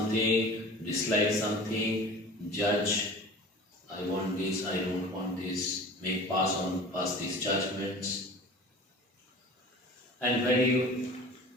dislike something, judge, I want this, I don't want this, pass these judgments. And when you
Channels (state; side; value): normal; both; correlation 0.40